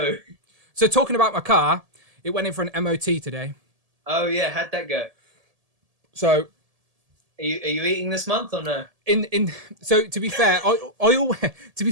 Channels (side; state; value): left; late; 1.7 ms